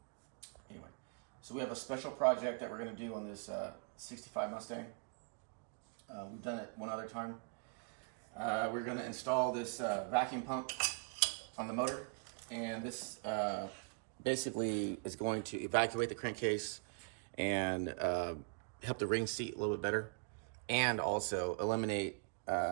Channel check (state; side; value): quieter; left; 37.4 dB